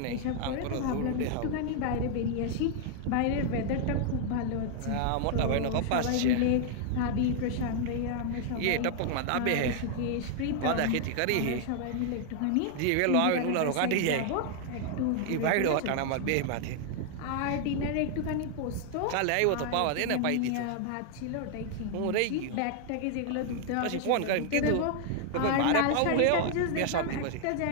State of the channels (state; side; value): different; both; correlation 0.00